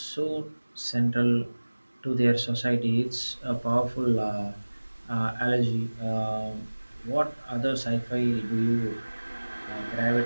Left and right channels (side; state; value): both; inverted; correlation -1.00